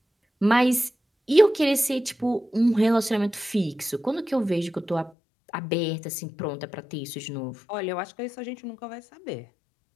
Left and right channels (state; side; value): drops out; right; at 5.1 s